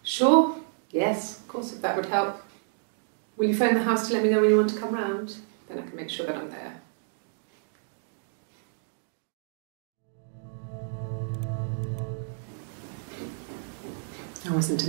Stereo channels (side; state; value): left; silent; digital silence